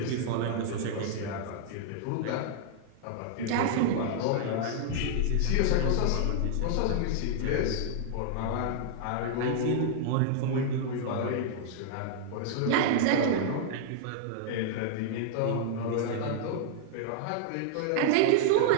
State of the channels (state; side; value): different; both; correlation -0.01